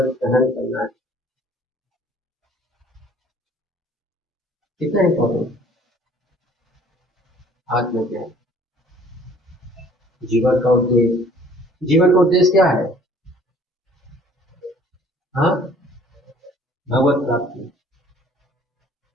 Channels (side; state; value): both; normal; correlation 0.55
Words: सहन करना है। कितना इंपॉर्टेंट आत्मज्ञान, जीवन का उद्देश्य। जीवन का उद्देश्य क्या है? हाँ, भगवत प्राप्ति।